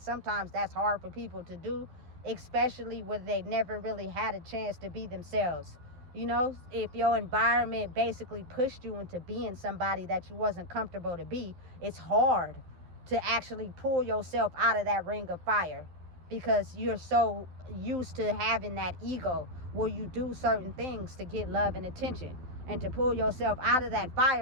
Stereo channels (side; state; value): left; late; 12 ms